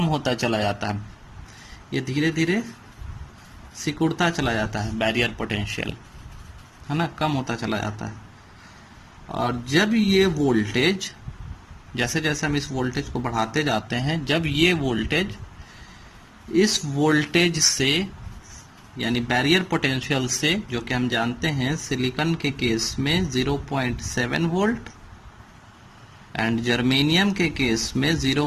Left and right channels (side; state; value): both; identical; correlation 1.00